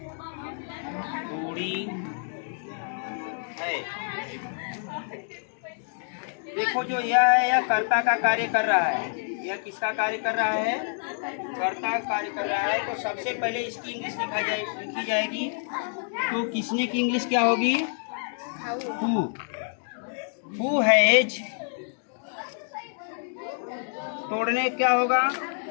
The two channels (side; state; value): right; silent; 60 dB below the other